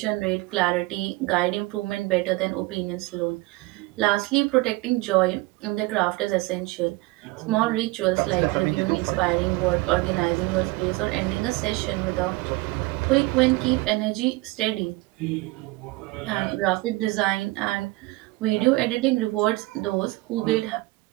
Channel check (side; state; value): left; quieter; 21.9 dB